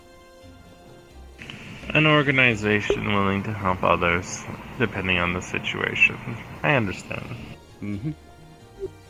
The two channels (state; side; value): identical; both; correlation 1.00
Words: An organization willing to help others, depending on the situation. I understand. Mm-hmm.